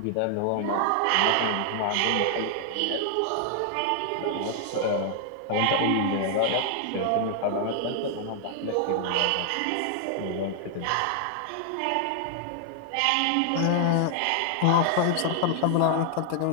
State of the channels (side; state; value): both; different; correlation 0.00